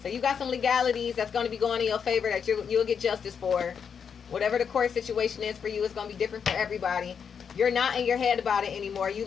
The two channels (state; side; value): quieter; right; 6.9 dB